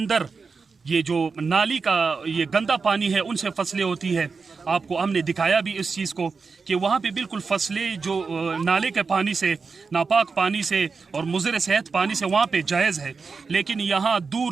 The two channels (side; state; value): left; quieter; 4.8 dB